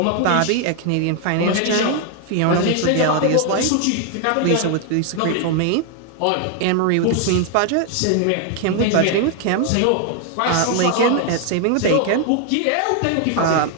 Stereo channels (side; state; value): both; different; correlation 0.00